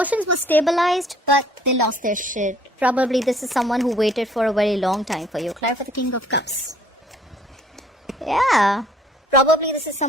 were stabilized, but they lost their shit. Probably this is someone who waited for a very long time for you. Clarify the King of Cups. Yeah. Probably this is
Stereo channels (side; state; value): both; normal; correlation 0.58